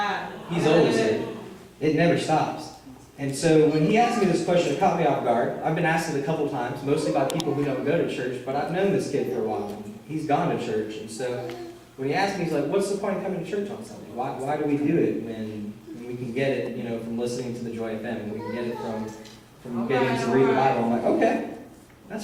He's always in. It never stops. And so when he asked me this question, it caught me off guard. I've been asked it a couple times, mostly by people who don't go to church, but I've known this kid for a while. He's gone to church. And so when he asked me, he's like, what's the point of coming to church on Sunday? Why do we do it when we can get it, from listening to the Joy FM. We can get it from getting to read the Bible. I'm like, okay,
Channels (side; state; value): both; identical; correlation 1.00